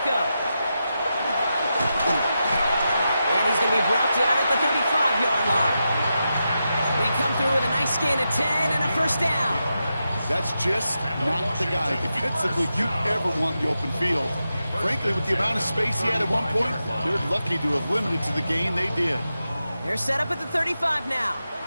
And he's going to be brought down at the 35-yard line. They come through with a nice gain of 10 and a 1st down. That's just not the guy defensively you ever want in the open field. frankly, with the amount of space he had at one point, they're lucky to have limited to the gain they did. They're set up at the 35 now.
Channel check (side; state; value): both; inverted; correlation -0.88